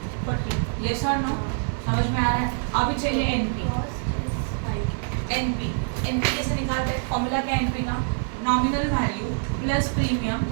Yes और नो? समझ में आ रहा है? अभी चाहिए एनपी। एनपी कैसे निकालते हैं? फॉर्मूला क्या है एनपी का? Nominal value plus premium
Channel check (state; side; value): silent; left; digital silence